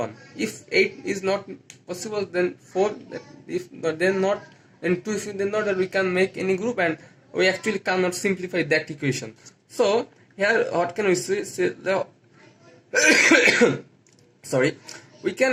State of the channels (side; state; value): both; identical; correlation 1.00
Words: If 8 is not possible, then 4. If not, then not. Then 2. If then not, that we can make any group, and we actually cannot simplify that equation. So here, what can we say? Sorry, we